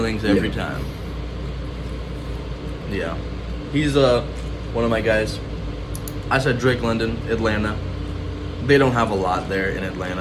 every time. Yeah, he's one of my guys. I said Drake London, Atlanta. They don't have a lot there in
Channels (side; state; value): both; identical; correlation 1.00